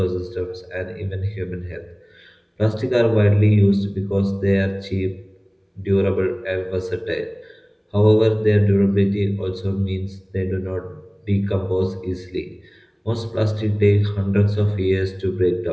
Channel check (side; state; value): both; identical; correlation 1.00